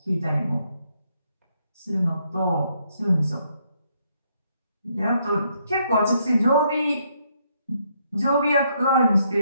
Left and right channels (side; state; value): both; inverted; correlation -0.73